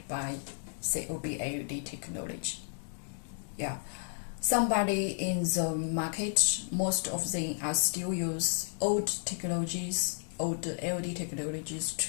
by COB LED technology. Yeah, somebody in the market, most of them are still use old technologies, old LED technologies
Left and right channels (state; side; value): silent; right; digital silence